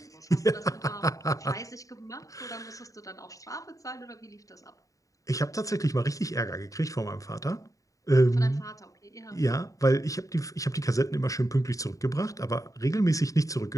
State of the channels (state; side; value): late; right; 0.16 ms